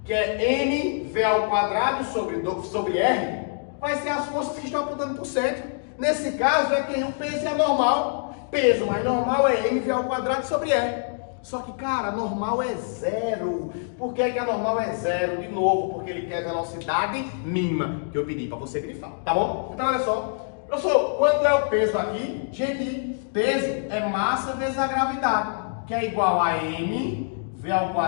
que é mv ao quadrado sobre r, vai ser as forças que estão apontando para o centro. Nesse caso é quem o peso é normal. Peso mais normal é mv ao quadrado sobre r. Só que, cara, a normal é zero. Por que a normal é zero? De novo, porque ele quer velocidade mínima, que eu pedi para você grifar, tá bom? Então, olha só. Professor, quanto é o peso aqui? Gente, peso é massa vezes a gravidade, que é igual a mv ao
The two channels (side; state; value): right; silent; digital silence